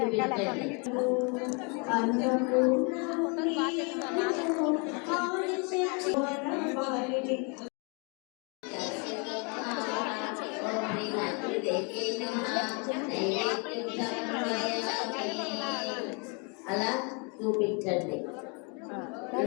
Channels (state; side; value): quieter; right; 34.3 dB